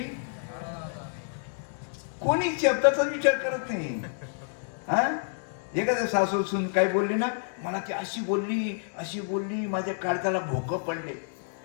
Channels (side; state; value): right; silent; digital silence